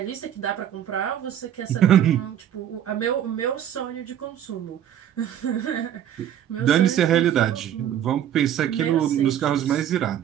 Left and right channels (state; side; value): quieter; left; 10.3 dB